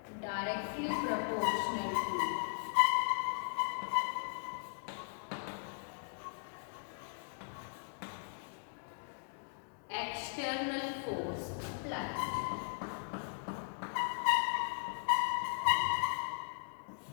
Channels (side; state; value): right; silent; digital silence